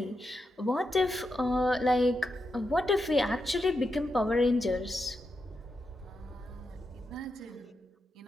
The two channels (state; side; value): normal; both; correlation 0.86